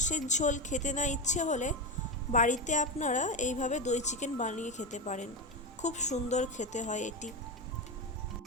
ঝোল খেতে না ইচ্ছে হলে বাড়িতে আপনারা এইভাবে দই চিকেন বানিয়ে খেতে পারেন। খুব সুন্দর খেতে হয় এটি।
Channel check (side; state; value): both; normal; correlation 0.15